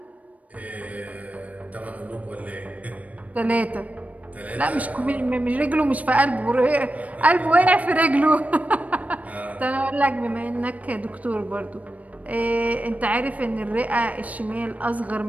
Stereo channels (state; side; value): late; left; 0.069 ms